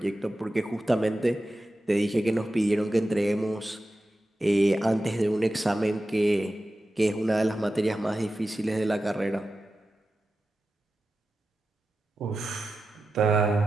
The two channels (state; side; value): normal; both; correlation 0.93